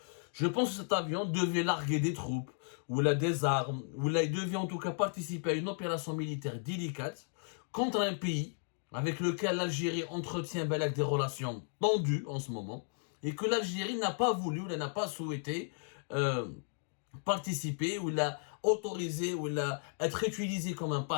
que cet avion devait larguer des troupes, ou là des armes, ou là il devait en tout cas participer à une opération militaire délicate contre un pays avec lequel l'Algérie entretient des relations tendues en ce moment, et que l'Algérie n'a pas voulu, ou n'a pas souhaité participer, ou l'a autorisé, ou l'a être utilisé comme un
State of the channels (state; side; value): silent; right; 55 dB below the other